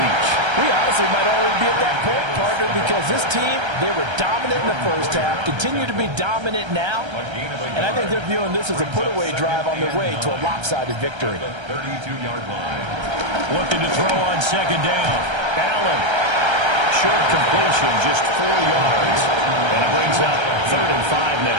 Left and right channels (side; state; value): left; late; 1.3 ms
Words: reach. We honestly might already be at that point, partner, because this team, they were dominant in the first half, continue to be dominant now, and I think they're viewing this as a put-away drive on their way to a lopsided victory. 32-yard line. Looking to throw on second down. Allen. Short completion, just 4 yards. And it brings up 3rd and 5